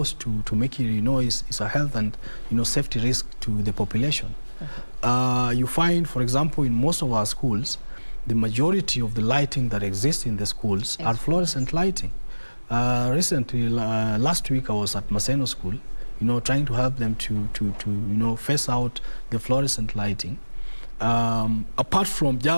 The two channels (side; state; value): both; inverted; correlation -1.00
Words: to mercury, it's a health and safety risk to the population. You find, for example, in most of our schools, the majority of the lighting that exists in the schools are fluorescent lighting. Recently, last week, I was at Maseno School, trying to help them to phase out the fluorescent lighting. Apart from